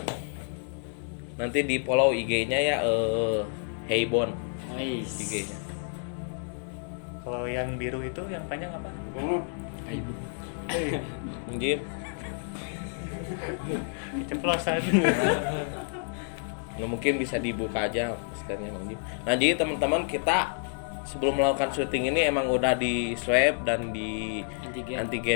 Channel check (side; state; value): right; silent; 58 dB below the other